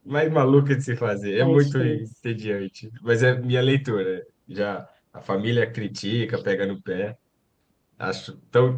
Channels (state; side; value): identical; both; correlation 1.00